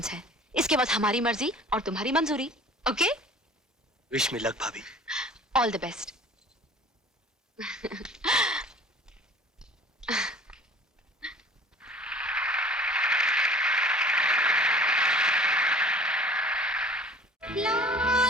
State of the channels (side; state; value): both; normal; correlation 0.46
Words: है। इसके बाद हमारी मर्जी और तुम्हारी मंजूरी। ओके? विश मी लक भाभी। All the best.